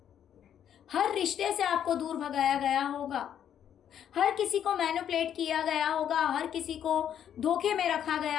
हर रिश्ते से आपको दूर भगाया गया होगा, हर किसी को मैनिपुलेट किया गया होगा, हर किसी को धोखे में रखा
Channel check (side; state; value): right; quieter; 9.5 dB